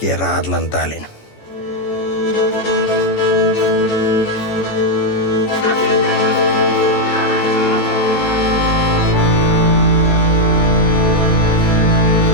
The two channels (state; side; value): late; right; 14 ms